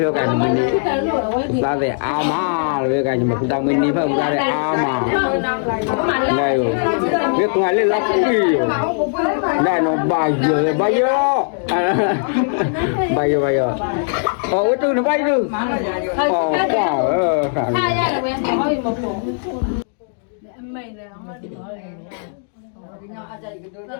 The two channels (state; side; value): silent; right; digital silence